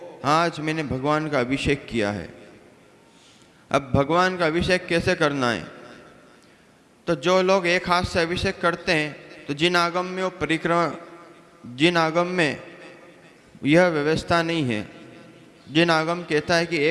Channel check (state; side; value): identical; both; correlation 1.00